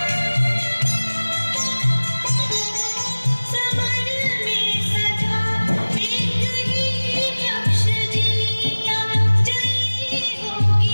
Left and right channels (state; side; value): inverted; both; correlation -1.00